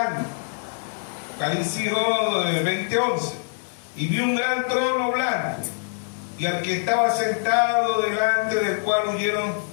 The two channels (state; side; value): silent; right; 62 dB below the other